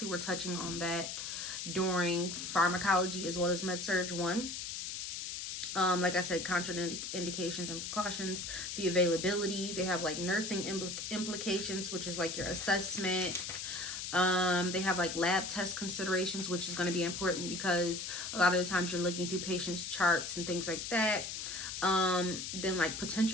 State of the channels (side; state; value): left; noise; hiss, 5 dB below the sound